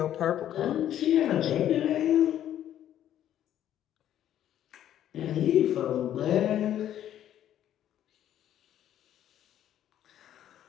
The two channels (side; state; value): right; quieter; 11.3 dB